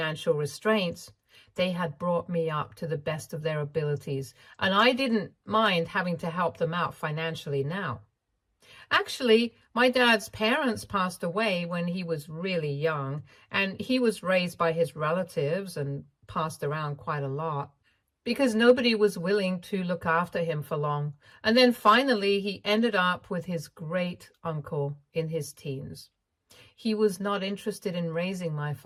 restraints, they had brought me up to the best of their abilities. And I didn't mind having to help them out financially now. Actually, my dad's parents passed away when he was really young, and he was raised by his relatives and passed around quite a lot because nobody was willing to look after him for long. And then finally, he ended up with his great uncle in his teens. He was not interested in raising my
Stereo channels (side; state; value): both; identical; correlation 1.00